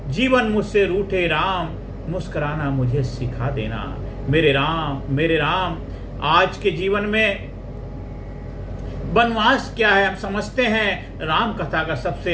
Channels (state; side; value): identical; both; correlation 1.00